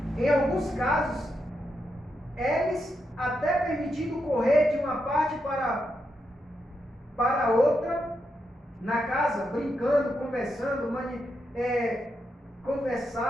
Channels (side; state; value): both; normal; correlation 0.83